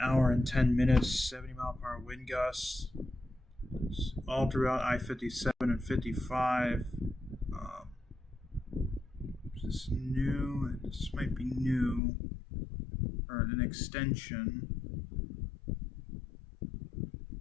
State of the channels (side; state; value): right; drops out; at 12.0 s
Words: and 10 minutes, 70-mile-per-hour wind gusts, all throughout I-57 and 55. Is this new? This might be new, or an extension.